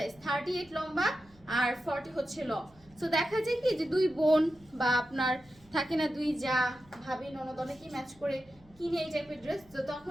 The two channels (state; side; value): noise; right; hum, 28 dB below the sound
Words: 38 লম্বা আর 40 হচ্ছে লং। সো দেখা যায় কি যে দুই বোন বা আপনার থাকে না দুই যা ভাবি ননদ অনেকেই ম্যাচ করে কিনে এই টাইপের ড্রেস, তো